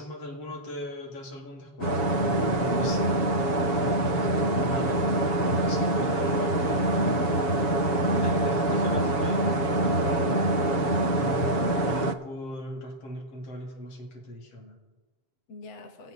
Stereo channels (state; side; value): late; right; 7.2 ms